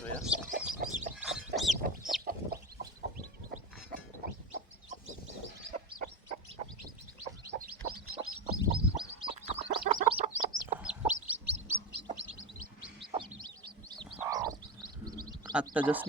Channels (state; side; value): normal; both; correlation 0.19